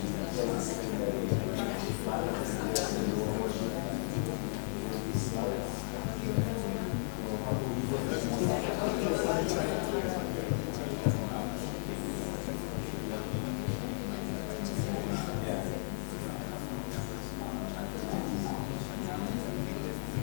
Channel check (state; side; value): silent; right; 55 dB below the other